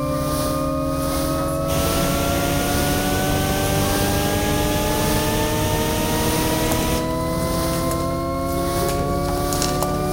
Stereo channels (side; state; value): both; identical; correlation 1.00